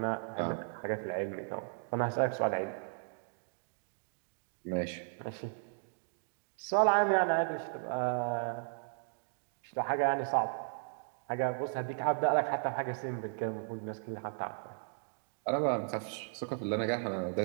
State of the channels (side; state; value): left; silent; digital silence